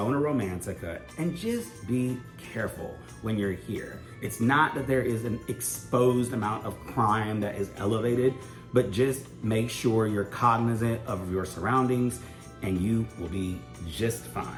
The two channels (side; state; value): both; identical; correlation 1.00